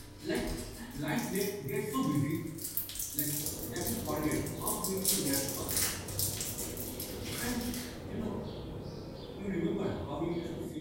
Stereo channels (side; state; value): both; identical; correlation 1.00